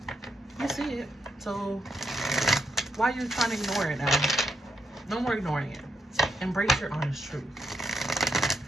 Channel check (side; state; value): both; normal; correlation 0.81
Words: You see it. So why are you trying to ignore it now? No more ignoring it. Embrace your honest truth.